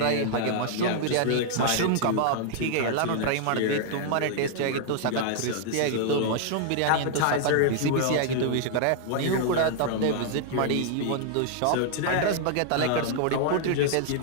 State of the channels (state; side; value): different; both; correlation -0.01